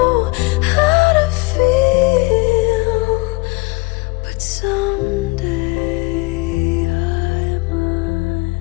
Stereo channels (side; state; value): right; quieter; 23.7 dB